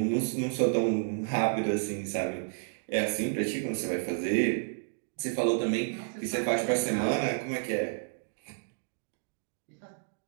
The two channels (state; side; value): silent; left; digital silence